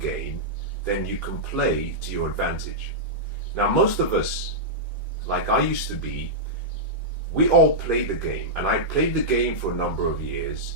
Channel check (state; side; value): normal; both; correlation -0.10